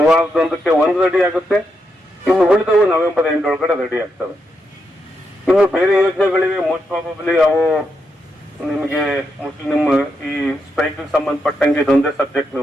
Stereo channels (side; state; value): both; normal; correlation 0.83